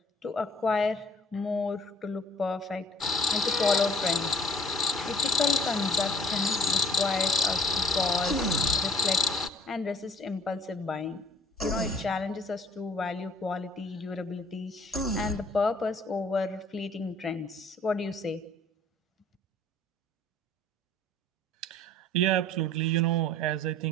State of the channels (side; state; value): both; normal; correlation 0.54